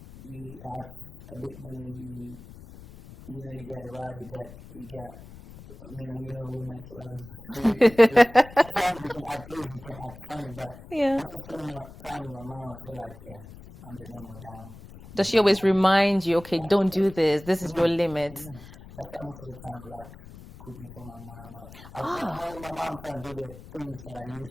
you have a bit money, you know, you get around, you get I mean, you know, women's love you. So sometimes you can act crazy, you can act funny, but once I'm spending my time with my mom, I feel like I'm the normal diamond. Does she always remind you, okay, don't do this, this is your limit? That's why most of the time I like cooking for my mom. When with my mom, I'm trying to do the things that I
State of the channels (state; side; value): noise; left; rumble, 17 dB below the sound